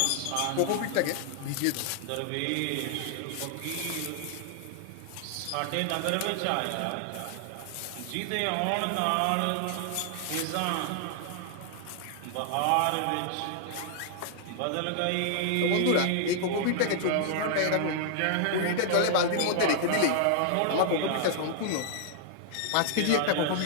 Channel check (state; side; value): different; both; correlation -0.01